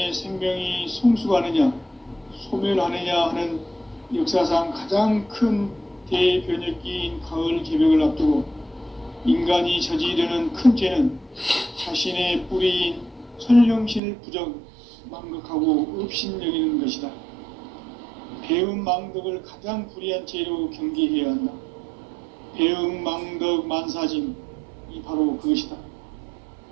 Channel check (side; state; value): left; drops out; at 14.0 s